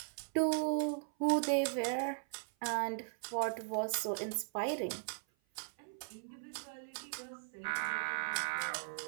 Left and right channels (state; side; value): silent; left; 52 dB below the other